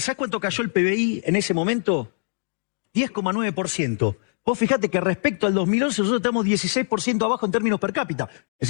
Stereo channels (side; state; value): right; silent; digital silence